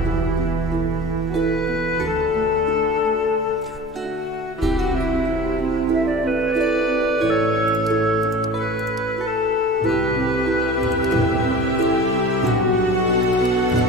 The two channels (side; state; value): both; normal; correlation 0.39